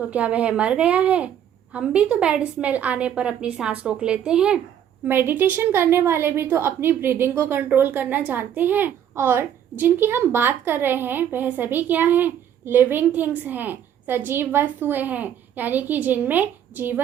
क्या वह मर गया है? हम भी तो बैड स्मेल आने पर अपनी सांस रोक लेते हैं। मेडिटेशन करने वाले भी तो अपनी ब्रीदिंग को कंट्रोल करना जानते हैं। और जिनकी हम बात कर रहे हैं वह सभी क्या हैं? लिविंग थिंग्स हैं, सजीव वस्तुएं हैं, यानी कि जिनमें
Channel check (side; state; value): left; quieter; 9.7 dB